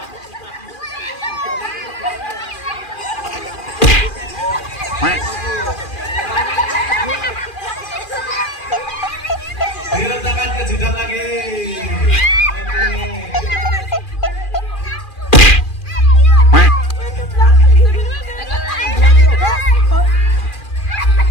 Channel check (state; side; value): late; right; 2.4 ms